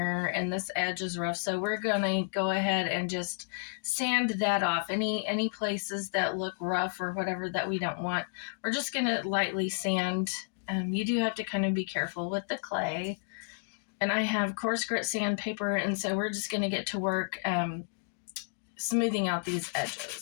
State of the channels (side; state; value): right; silent; digital silence